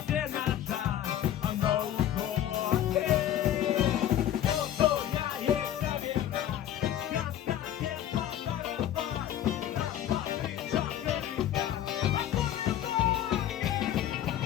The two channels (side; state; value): right; quieter; 11.4 dB